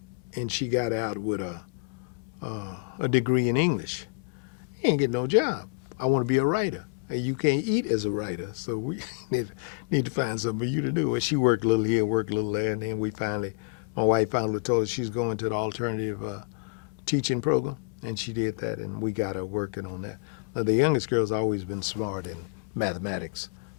and she got out with a degree in English. He ain't get no job. I want to be a writer. And you can't eat as a writer, so we need to find something for you to do. And she worked a little here, worked a little there, and then my wife finally told her she's going to the alternative teaching program, and she did that, and we got her working on that. Now, the youngest girl's always been smart in mathematics,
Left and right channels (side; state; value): right; quieter; 32.1 dB